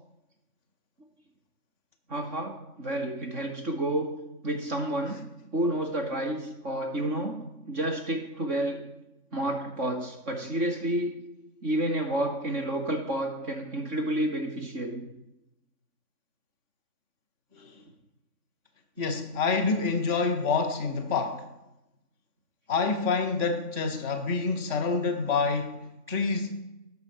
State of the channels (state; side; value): late; left; 3.5 ms